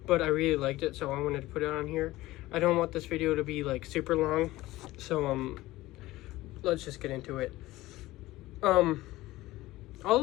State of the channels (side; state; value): right; quieter; 17.7 dB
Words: but I really liked it, so I wanted to put it on here. I don't want this video to be like super long, so let's just get into it.